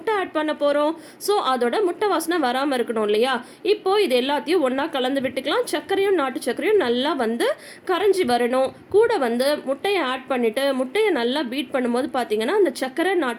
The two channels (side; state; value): both; identical; correlation 1.00